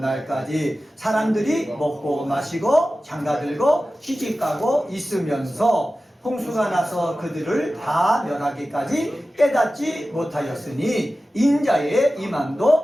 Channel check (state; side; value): normal; both; correlation 0.95